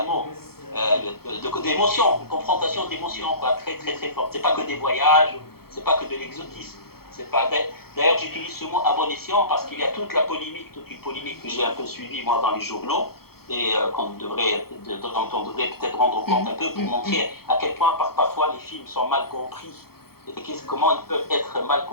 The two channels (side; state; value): right; late; 0.95 ms